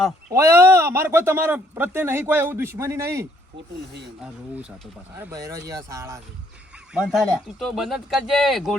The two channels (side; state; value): both; normal; correlation 0.66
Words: ઓય અમારે કોઈ તમારા પ્રત્યે નહીં કોઈ એવું દુશ્મની નહીં ખોટું નહીં આ રોવું સાતો પાછા અરે બૈરોજી આ શાળા છે બંધ થાય લ્યા. તું તો બંધ જ કરજે